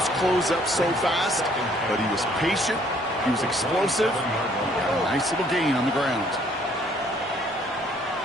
close up so fast, but he was patient, he was explosive, he got a nice little gain on the ground.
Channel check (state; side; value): normal; both; correlation 0.62